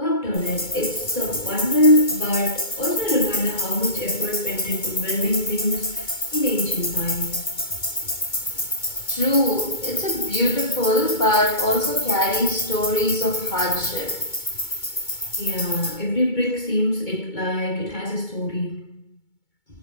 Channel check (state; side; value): late; right; 2.2 ms